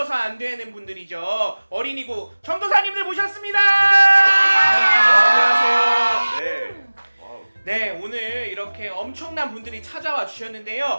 안 되는 분들이죠. 어린이국 전도사님들 모셨습니다. 안녕하세요. 네. 네, 오늘 이렇게 엄청난 분들이 찾아와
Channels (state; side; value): inverted; both; correlation -1.00